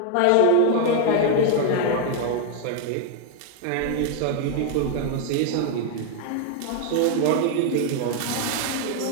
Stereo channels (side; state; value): both; different; correlation 0.00